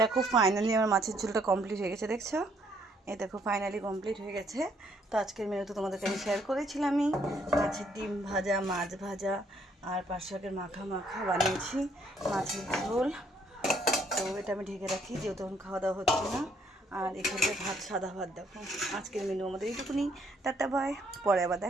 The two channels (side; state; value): both; normal; correlation 0.68